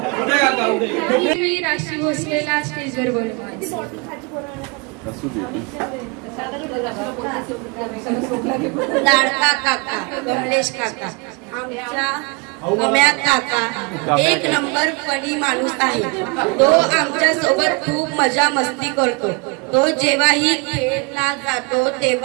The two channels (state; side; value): quieter; left; 30.5 dB